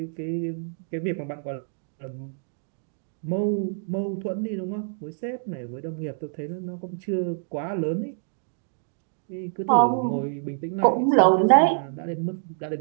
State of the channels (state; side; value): silent; left; digital silence